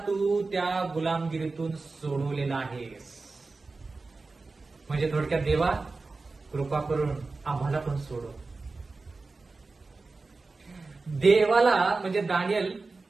त्या गुलामगिरीतून सोडवलेला आहेस. म्हणजे थोडक्यात देवा, कृपा करून आम्हाला पण सोडव. देवाला म्हणजे दानिएल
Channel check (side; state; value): left; quieter; 3.8 dB